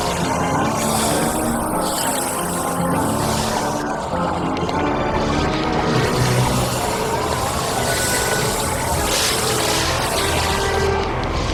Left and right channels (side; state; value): both; identical; correlation 1.00